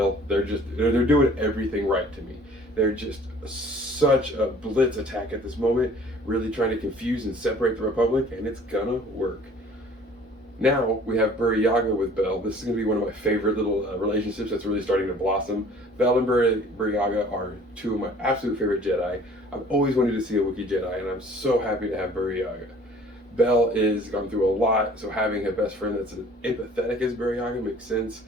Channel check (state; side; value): normal; both; correlation 0.51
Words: They're doing everything right to me. They're just such a blitz attack at this moment, really trying to confuse and separate the Republic, and it's gonna work. Now we have Burryaga with Bel. This is going to be one of my favorite little relationships that's really starting to blossom. Bel and Burryaga are two of my absolute favorite Jedi. I've always wanted to see a Wookiee Jedi, and I'm so happy to have Burryaga. Bel is gone through a lot, so having a best friend that's as empathetic as Burryaga makes sense,